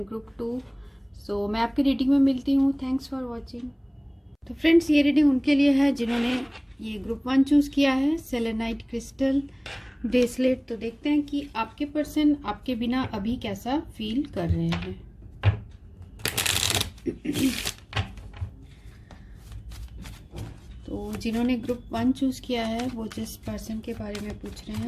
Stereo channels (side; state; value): both; identical; correlation 1.00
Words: ग्रुप 2। सो मैं आपकी रीडिंग में मिलती हूँ। Thanks for watching. तो फ्रेंड्स, ये रीडिंग उनके लिए है जिन्होंने ये ग्रुप 1 चूज किया है, सेलेनाइट क्रिस्टल ब्रेसलेट। तो देखते हैं कि आपके पर्सन आपके बिना अभी कैसा फील कर रहे हैं। तो जिन्होंने ग्रुप 1 चूज किया है वो जिस पर्सन के बारे में पूछ रहे